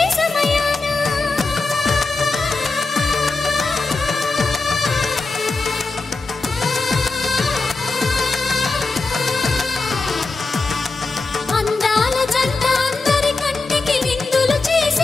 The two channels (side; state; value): right; quieter; 3.7 dB